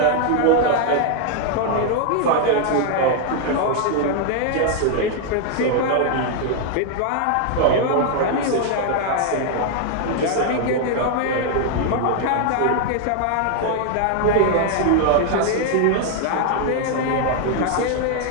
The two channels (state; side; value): different; both; correlation 0.00